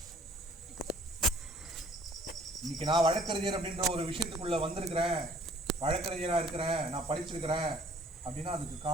இன்னைக்கு நான் வழக்கறிஞர் அப்படின்ற ஒரு விஷயத்துக்குள்ள வந்திருக்கிறேன், வழக்கறிஞரா இருக்கிறேன், நான் படிச்சிருக்கிறேன் அப்படின்னா அதுக்கு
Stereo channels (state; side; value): normal; both; correlation 0.57